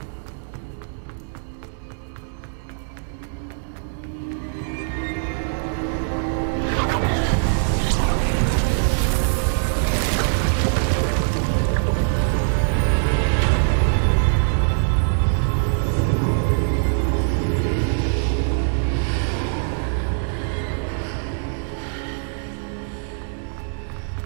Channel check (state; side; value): silent; left; digital silence